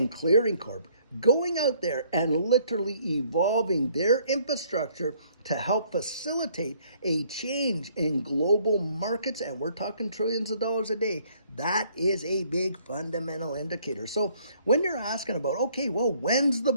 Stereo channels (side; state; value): both; inverted; correlation -0.62